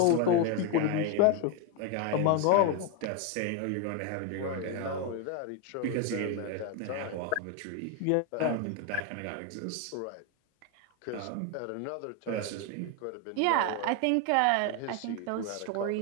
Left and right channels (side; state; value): both; different; correlation 0.01